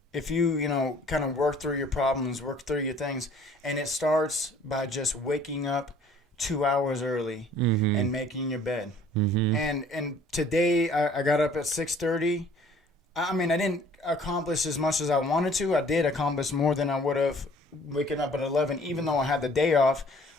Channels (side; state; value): both; normal; correlation 0.54